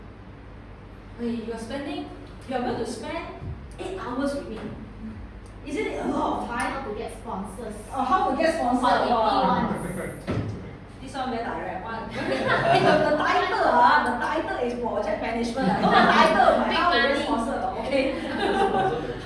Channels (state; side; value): identical; both; correlation 1.00